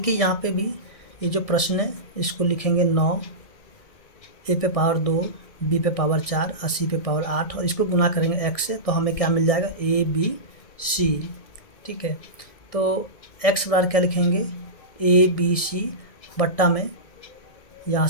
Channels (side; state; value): right; late; 1.7 ms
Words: यहाँ पे भी ये जो प्रश्न है इसको लिखेंगे 9, ए पे पावर 2, बी पे पावर 4 और सी पे पावर 8 और इसको गुना करेंगे एक्स से, तो हमें क्या मिल जाएगा, ए बी सी। ठीक है, तो एक्स बराबर क्या लिखेंगे, ए बी सी बट्टा में यहाँ